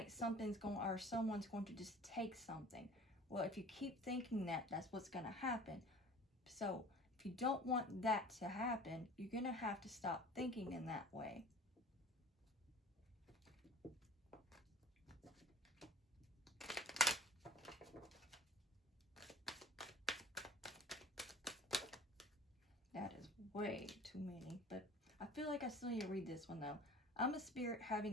someone's going to just take something. Well, if you keep thinking that, that's what's going to happen. So if you don't want that to happen, you're going to have to stop thinking in that way. That is way too many, but I feel like I still need to read this one though. I'm a spirit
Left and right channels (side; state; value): both; normal; correlation 0.44